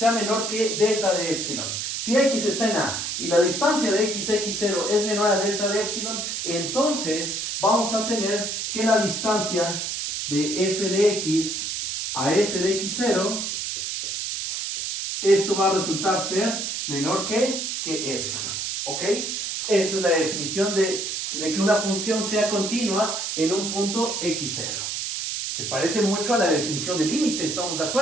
menor que delta de epsilon. Si x está en A y la distancia de x0 es menor a delta de epsilon, entonces vamos a tener que la distancia de f de x a f de x0, esto va a resultar ser menor que epsilon. ¿Ok? Esa es la definición de que una función sea continua en un punto x0. Se parece mucho a la definición de límite, ¿estamos de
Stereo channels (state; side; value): noise; right; hiss, 3 dB below the sound